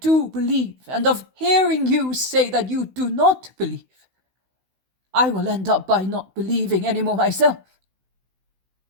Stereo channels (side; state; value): left; late; 16 ms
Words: believe, and of hearing you say that you do not believe, I will end up by not believing any more myself.